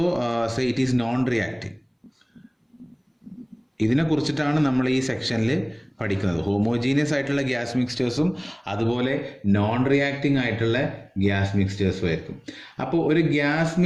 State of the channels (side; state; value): both; identical; correlation 1.00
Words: say it is non-reacting. ഇതിനെ കുറിച്ചിട്ടാണ് നമ്മൾ ഈ സെക്ഷനിൽ പഠിക്കുന്നത്. ഹോമോജീനിയസ് ആയിട്ടുള്ള ഗ്യാസ് മിക്സ്ചേഴ്സും അതുപോലെ നോൺ റിയാക്ടിങ് ആയിട്ടുള്ള ഗ്യാസ് മിക്സ്ചേഴ്സും ആയിരിക്കും. അപ്പോൾ ഒരു ഗ്യാസ്